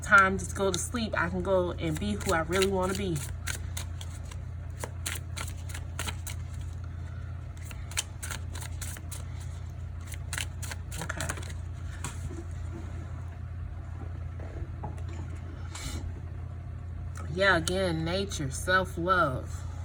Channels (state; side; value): identical; both; correlation 1.00